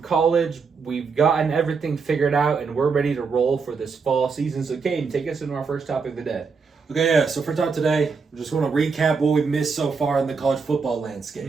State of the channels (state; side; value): quieter; left; 5.1 dB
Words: college. We've gotten everything figured out, and we're ready to roll for this fall season. So, Caden, take us into our first topic of the day. Okay, yeah. So for talk today, we're just going to recap what we've missed so far in the college football